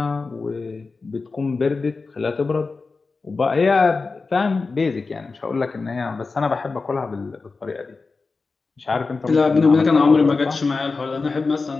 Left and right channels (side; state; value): right; quieter; 4.1 dB